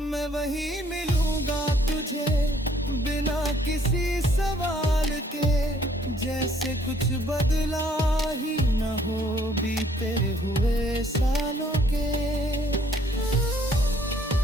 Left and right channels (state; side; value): normal; both; correlation 0.63